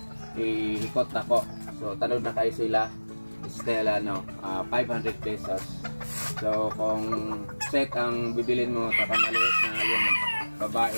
ihikot ako. So, tanod na kayo sila. Still, 500 pesos. So, kung set ang bibilin mo, maliit na yung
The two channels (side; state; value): both; inverted; correlation -1.00